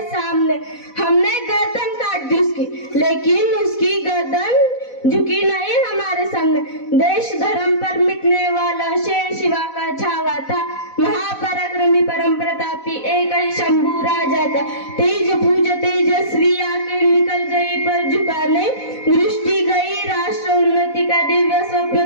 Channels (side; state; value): right; late; 4.1 ms